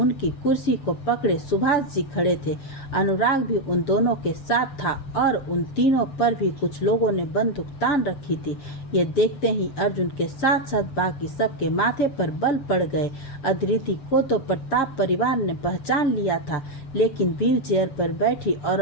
कुर्सी को पकड़े सुभाष जी खड़े थे। अनुराग भी उन दोनों के साथ था और उन तीनों पर भी कुछ लोगों ने बंदूक तान रखी थी। ये देखते ही अर्जुन के साथ साथ बाकी सबके माथे पर बल पड़ गए। अदिति को तो प्रताप परिवार ने पहचान लिया था, लेकिन व्हील चेयर पर बैठी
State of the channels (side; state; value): right; late; 6.9 ms